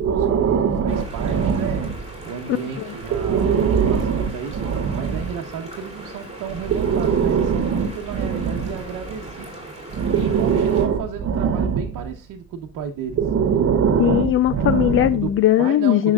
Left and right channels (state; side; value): normal; both; correlation 0.18